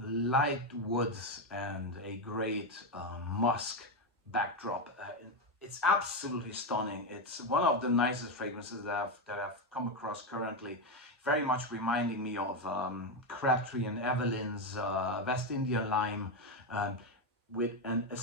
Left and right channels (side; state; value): both; normal; correlation 0.09